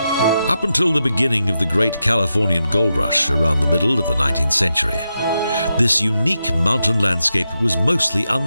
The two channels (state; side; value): inverted; both; correlation -0.87